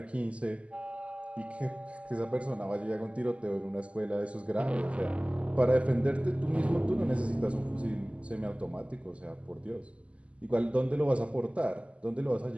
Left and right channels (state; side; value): late; left; 0.059 ms